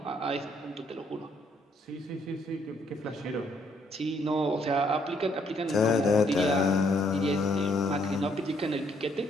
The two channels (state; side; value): normal; both; correlation 0.69